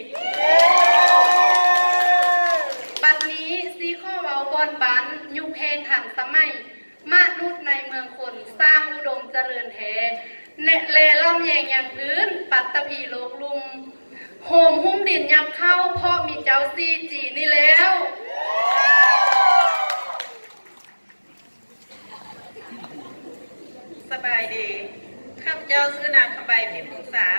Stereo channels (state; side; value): inverted; both; correlation -1.00